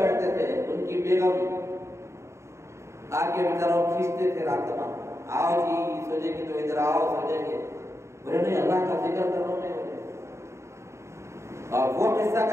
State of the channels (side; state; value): left; late; 0.14 ms